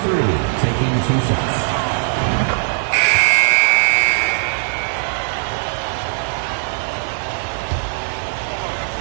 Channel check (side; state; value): left; silent; 66 dB below the other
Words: 3, taking 2 shots.